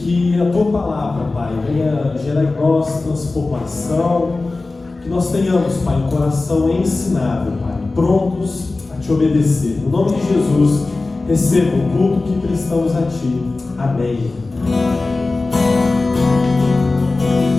a Tua palavra, Pai, venha gerar em nós transformação, que nós tenhamos, Pai, um coração ensinado, Pai, prontos a Te obedecer. No nome de Jesus, receba o culto que prestamos a Ti. Amém.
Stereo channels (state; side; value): quieter; right; 3.4 dB